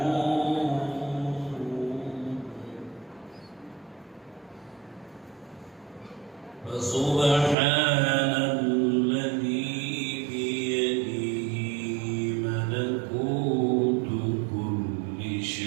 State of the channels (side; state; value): left; drops out; at 7.6 s